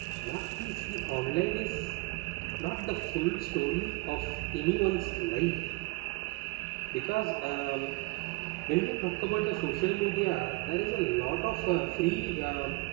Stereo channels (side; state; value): left; quieter; 24.8 dB